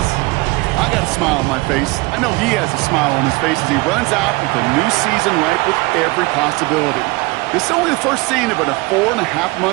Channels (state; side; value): quieter; left; 24.4 dB